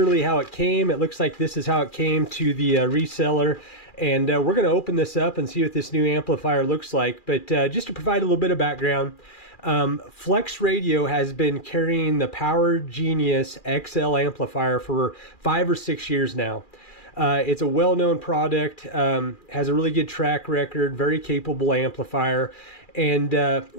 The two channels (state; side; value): late; right; 2.4 ms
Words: how it came. It looks like this is how it came to the reseller, and we're going to open this up and see what this new amplifier looks like. But just to provide a little bit of background, Flex Radio has been carrying the Power Genius XL amplifier for 5 or 6 years now. It's a well-known product, has a really good track record, very capable amplifier. And